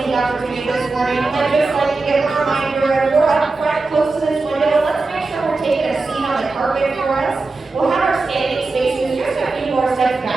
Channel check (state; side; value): quieter; left; 3.7 dB